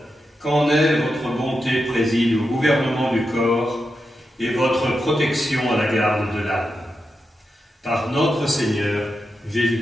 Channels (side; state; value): both; normal; correlation 0.88